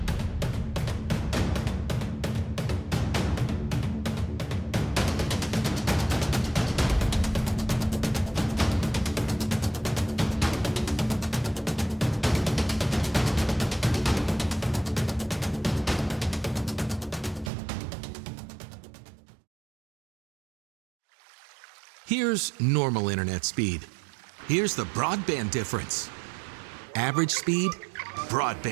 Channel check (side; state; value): left; drops out; at 17.5 s